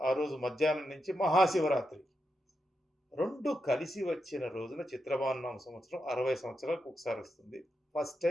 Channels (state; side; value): normal; both; correlation 0.86